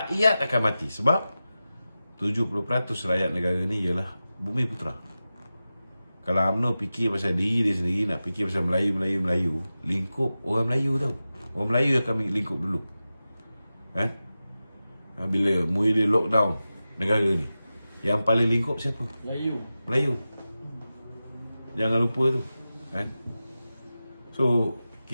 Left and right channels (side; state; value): both; inverted; correlation -0.94